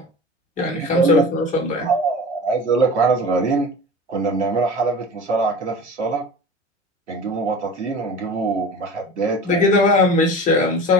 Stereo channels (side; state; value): both; normal; correlation 0.36